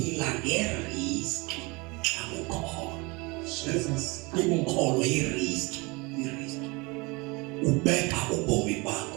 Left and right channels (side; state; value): left; quieter; 26.3 dB